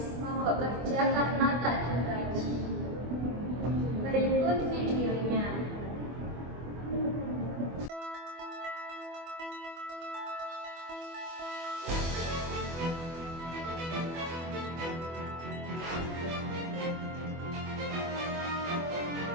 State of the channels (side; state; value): left; late; 24 ms